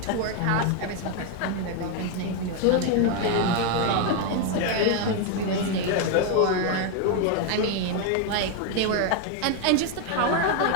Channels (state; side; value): different; both; correlation 0.01